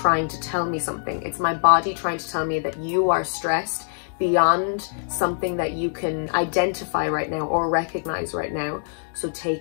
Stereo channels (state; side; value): silent; right; digital silence